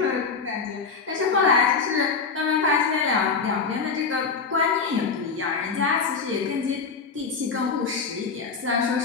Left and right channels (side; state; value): right; quieter; 5.1 dB